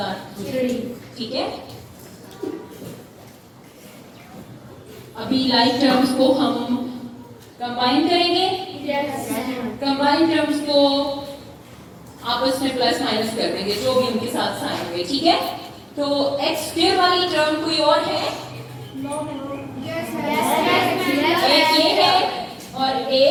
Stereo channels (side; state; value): both; identical; correlation 1.00